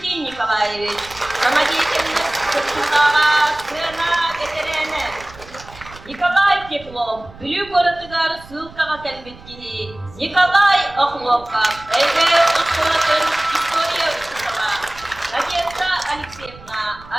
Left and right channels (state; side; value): noise; right; rumble, 20 dB below the sound